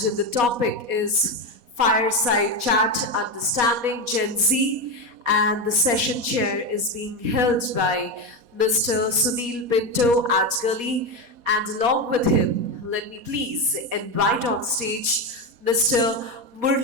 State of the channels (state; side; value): late; left; 4.2 ms